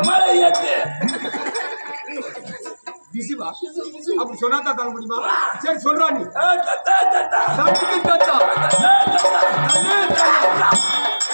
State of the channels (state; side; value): inverted; both; correlation -1.00